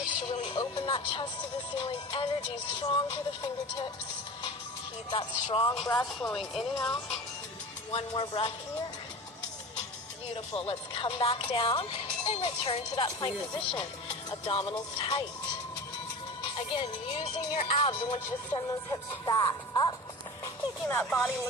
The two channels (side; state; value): both; normal; correlation 0.34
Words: to really open that chest to the ceiling. Energy strong through the fingertips. Keep that strong breath flowing in and out. One more breath here. Beautiful. Let's come back down and return to that plank position. Abdominals tight. Again, using your abs, I want you to send those hips back up, making that body